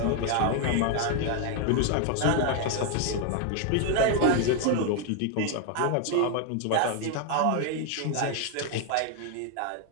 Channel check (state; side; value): different; both; correlation 0.01